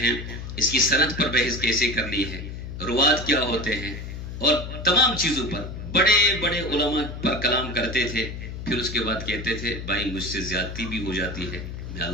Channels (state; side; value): noise; left; hum, 8 dB below the sound